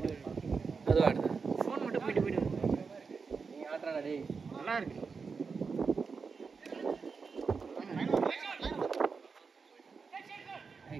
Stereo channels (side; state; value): left; quieter; 5.1 dB